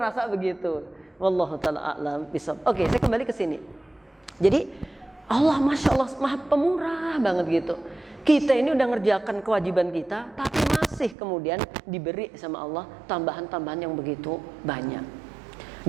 begitu. Wallahu ta'ala a'lam bishawab. Oke, saya kembali ke sini. Jadi Allah Masya Allah maha pemurah banget gitu. Kita ini udah ngerjakan kewajiban kita, tapi masih kemudian diberi sama Allah tambahan-tambahan yang begitu banyak.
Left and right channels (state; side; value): drops out; left; at 11.2 s